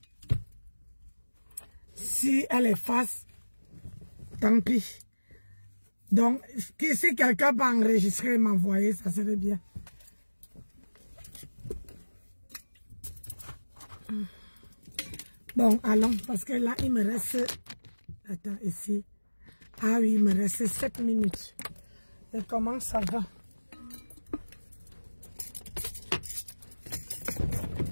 Si elle efface, tant pis. Donc, si quelqu'un peut enregistrer et m'envoyer, ça serait bien. Bon, allons, parce que là, il me reste... Attends, ici. Ah oui, il me reste 7 minutes. Et comment ça va?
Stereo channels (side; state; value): both; inverted; correlation -1.00